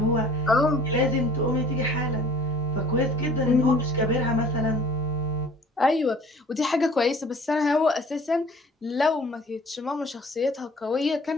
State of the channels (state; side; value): normal; both; correlation 0.49